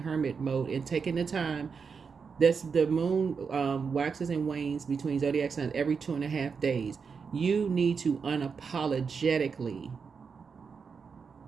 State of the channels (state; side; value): quieter; left; 5.7 dB